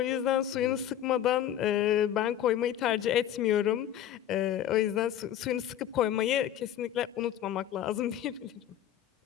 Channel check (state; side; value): quieter; right; 11.0 dB